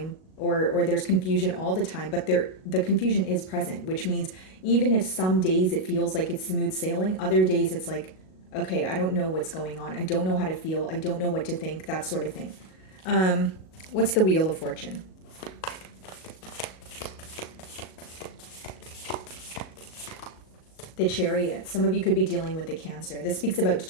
or there's confusion all the time, but the confusion is present, which means even if some days it feels like it's smooth sailing, other days it's like, okay, I don't know what's going on. I don't know how to feel. I don't know what to think, that sort of thing. What's the Wheel of Fortune? The Chariot. Some of you could be dealing with the Cancer. This speaks about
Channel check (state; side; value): late; right; 38 ms